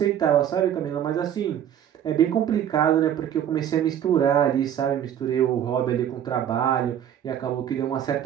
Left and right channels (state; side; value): quieter; left; 10.0 dB